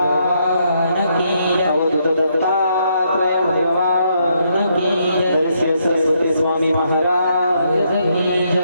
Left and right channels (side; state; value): both; inverted; correlation -0.75